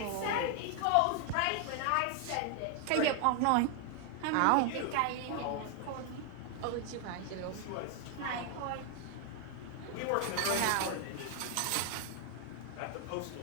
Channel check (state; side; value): different; both; correlation 0.00